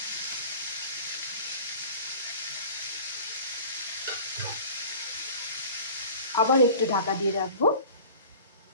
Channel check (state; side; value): inverted; both; correlation -0.41